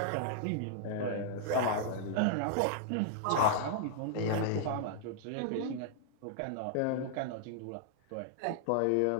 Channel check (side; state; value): both; different; correlation -0.01